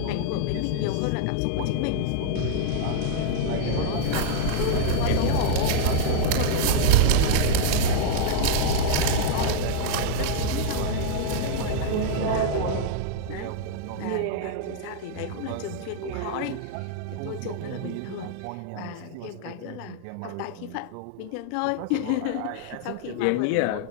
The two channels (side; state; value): both; different; correlation -0.01